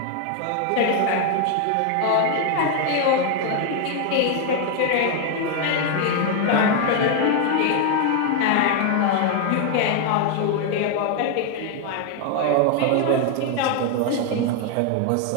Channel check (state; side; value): different; both; correlation 0.01